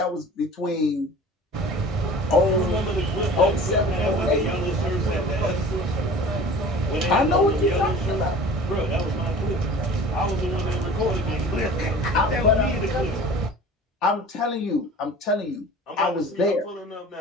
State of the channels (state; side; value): normal; both; correlation 0.42